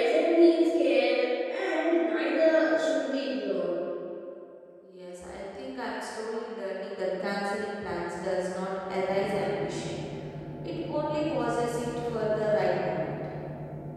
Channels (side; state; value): both; identical; correlation 1.00